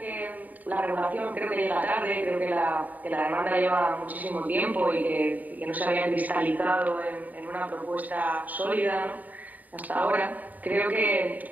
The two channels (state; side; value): late; left; 0.079 ms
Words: la regulación creo que llega tarde, creo que la demanda lleva muchísimo tiempo y que no se había cristalizado en una propuesta sólida, ¿no? Hasta ahora, creo que